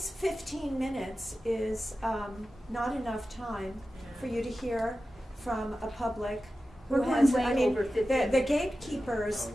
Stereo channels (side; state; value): both; normal; correlation 0.93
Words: 15 minutes is not enough time for you to hear from a public who We're has, going way I mean, over 15 the